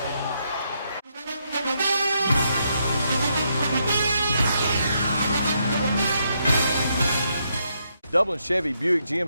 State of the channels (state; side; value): inverted; both; correlation -0.78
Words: Dublin Chevy Buick